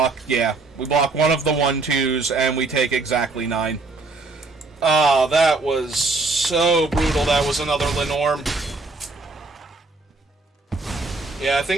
yeah, we block one of the 1/2s, and we take exactly 9. Oh, that was so brutal. That was another Lenormand. Yeah, I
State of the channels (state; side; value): quieter; left; 3.6 dB